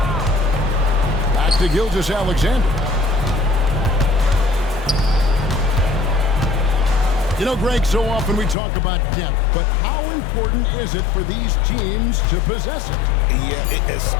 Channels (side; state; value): right; drops out; at 8.6 s